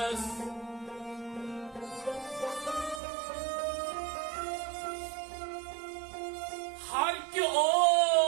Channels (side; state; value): left; drops out; at 3.0 s